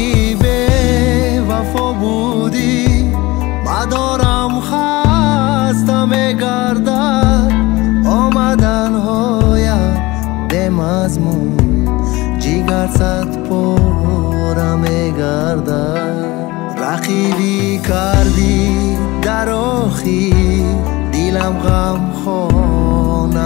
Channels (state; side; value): quieter; right; 21.1 dB